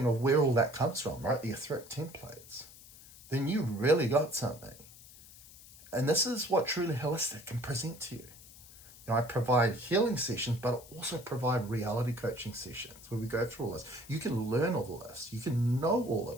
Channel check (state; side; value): noise; left; hiss, 20 dB below the sound